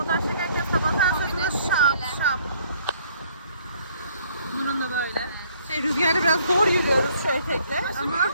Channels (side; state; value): both; inverted; correlation -0.62